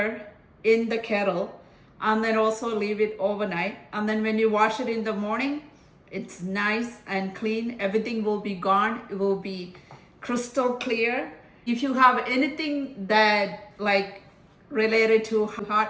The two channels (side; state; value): both; identical; correlation 1.00